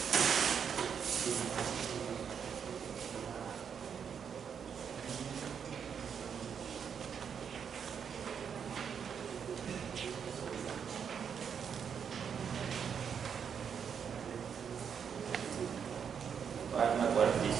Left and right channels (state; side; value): quieter; left; 7.3 dB